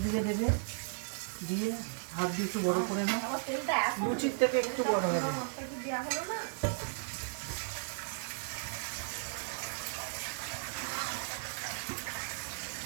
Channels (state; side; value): silent; left; 54 dB below the other